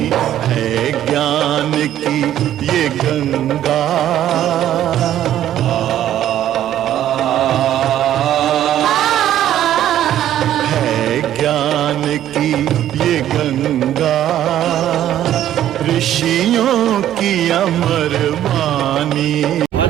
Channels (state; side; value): quieter; left; 11.7 dB